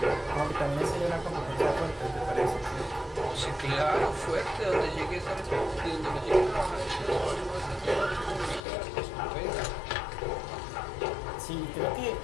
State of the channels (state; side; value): drops out; right; at 8.6 s